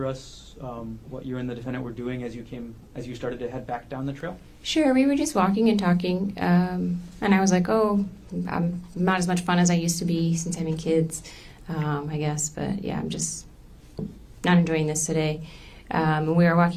us what you and the defendant were doing as you started to head back down the trail? Sure, we were just walking and talking, and I was like, oh, I'm not as much fun as I used to be since having kids, I guess, but yeah, I'm just not enjoying this today. And we were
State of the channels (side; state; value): both; identical; correlation 1.00